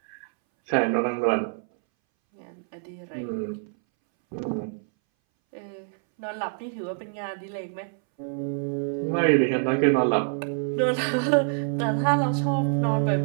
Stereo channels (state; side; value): silent; left; 60 dB below the other